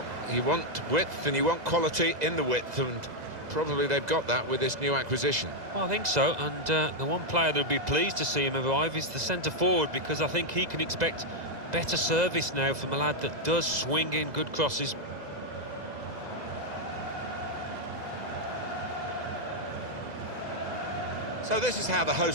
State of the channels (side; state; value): left; late; 2.0 ms